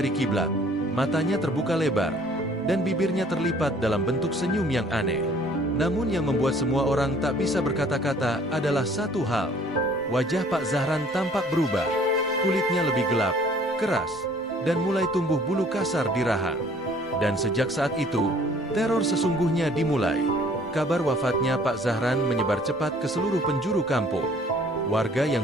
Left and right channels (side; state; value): both; normal; correlation 0.56